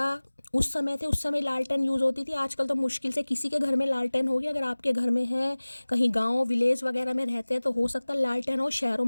उस समय थे, उस समय लालटेन यूज़ होती थी। आजकल तो मुश्किल से किसी के घर में लालटेन होगी, अगर आपके घर में है, कहीं गांव विलेज वगैरह में रहते हैं तो हो सकता है लालटेन हो, शहरों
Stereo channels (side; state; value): both; inverted; correlation -1.00